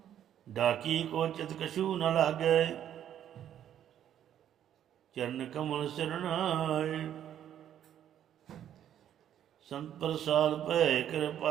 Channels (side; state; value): left; quieter; 10.4 dB